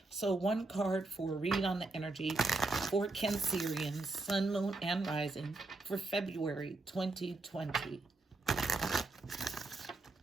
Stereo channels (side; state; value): left; quieter; 3.3 dB